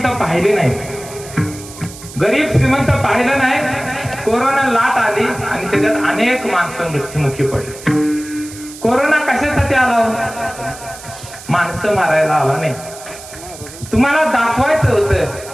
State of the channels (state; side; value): noise; right; hiss, 16 dB below the sound